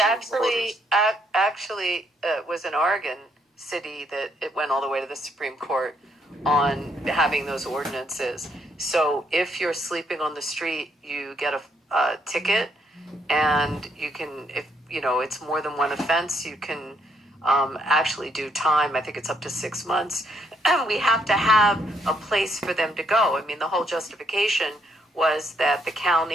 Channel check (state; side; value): normal; both; correlation 0.72